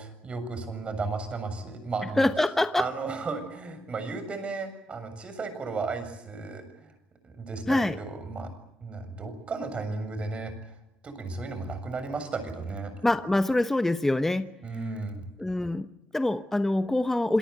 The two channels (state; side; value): normal; both; correlation 0.89